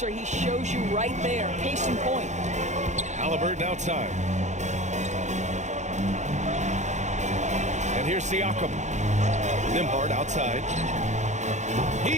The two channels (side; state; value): left; late; 0.34 ms